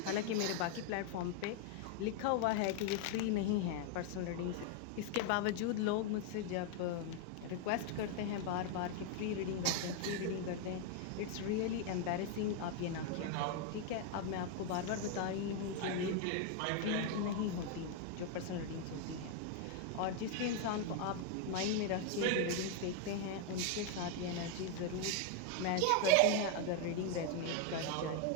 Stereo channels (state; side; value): different; both; correlation 0.01